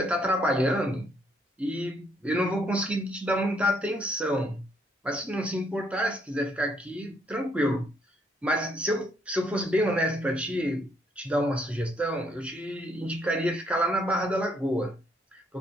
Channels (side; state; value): both; normal; correlation 0.70